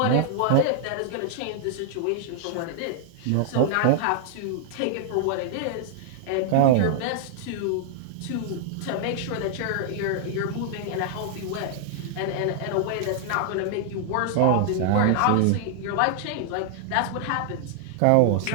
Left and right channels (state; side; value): different; both; correlation -0.01